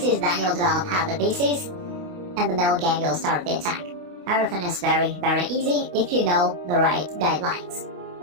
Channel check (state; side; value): late; left; 28 ms